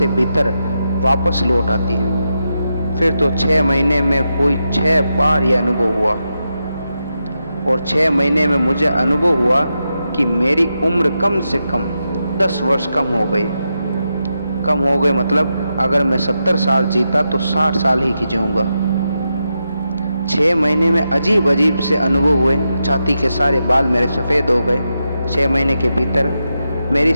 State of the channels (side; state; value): both; inverted; correlation -0.87